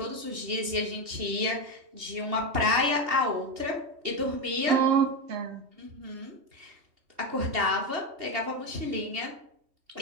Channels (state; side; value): late; left; 2.8 ms